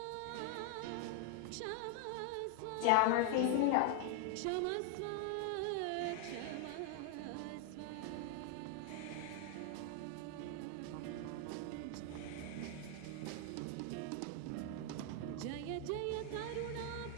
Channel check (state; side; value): different; both; correlation 0.00